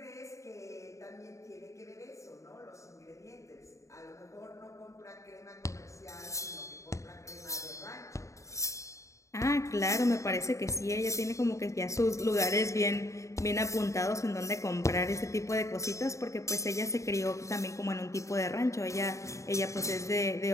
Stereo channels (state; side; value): late; right; 0.15 ms